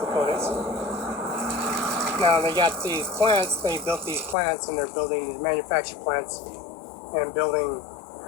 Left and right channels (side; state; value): right; drops out; at 4.4 s